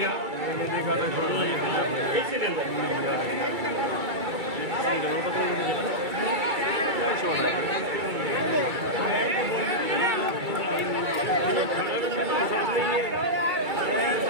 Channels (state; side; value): late; left; 2.3 ms